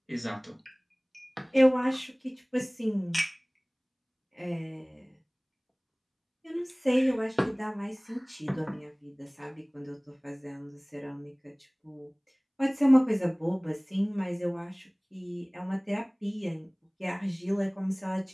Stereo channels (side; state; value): both; identical; correlation 1.00